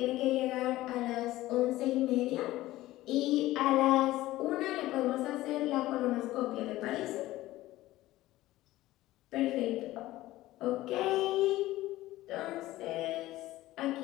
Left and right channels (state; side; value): quieter; right; 16.5 dB